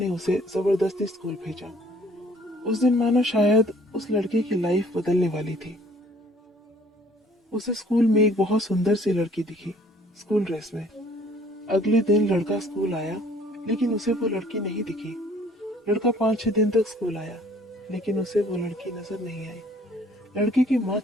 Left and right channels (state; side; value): normal; both; correlation 0.57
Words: उसे जबरदस्ती स्कूल भेजा। उस दिन मानो शायद उस लड़के की लाइफ बदलने वाली थी। उसे स्कूल में एक बहुत सुंदर सी लड़की दिखी, स्कूल ड्रेस में। अगले दिन लड़का स्कूल आया, लेकिन उसे वो लड़की नहीं दिखी। लड़का 5-6 दिन तक स्कूल आया, लेकिन उसे वो लड़की नजर नहीं आई। लड़के की माँ